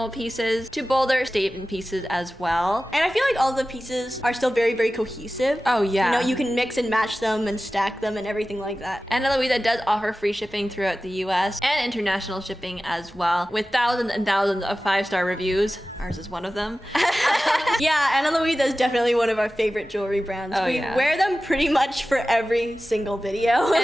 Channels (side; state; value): both; normal; correlation 0.95